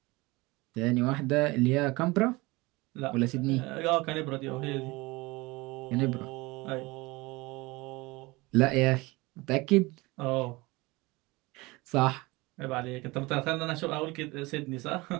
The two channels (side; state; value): left; quieter; 22.9 dB